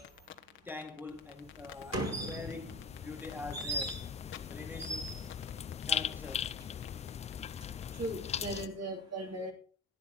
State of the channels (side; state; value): right; quieter; 3.2 dB